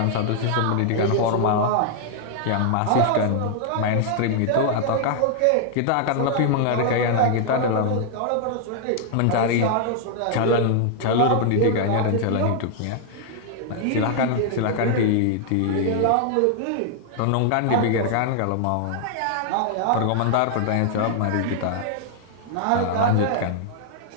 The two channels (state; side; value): different; both; correlation 0.00